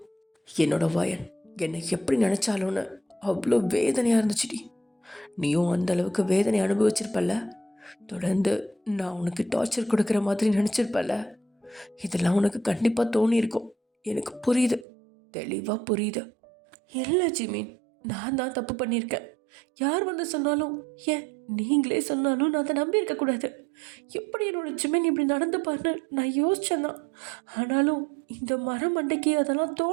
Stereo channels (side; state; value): left; drops out; at 14.9 s